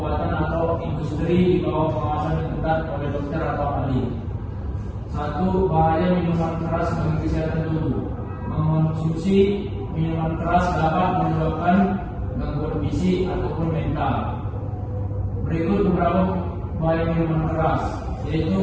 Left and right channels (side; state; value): both; identical; correlation 1.00